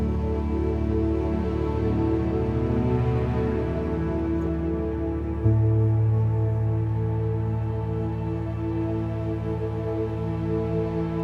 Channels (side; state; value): both; identical; correlation 1.00